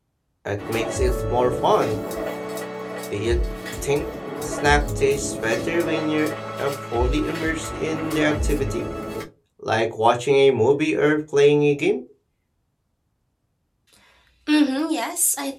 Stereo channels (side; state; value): both; identical; correlation 1.00